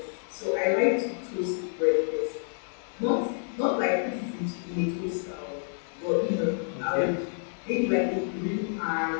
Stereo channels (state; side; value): silent; right; 59 dB below the other